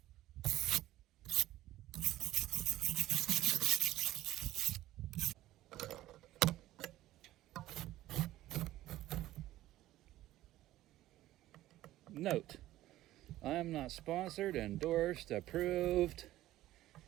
Note, I am not sponsored, endorsed, approved,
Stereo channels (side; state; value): left; quieter; 15.1 dB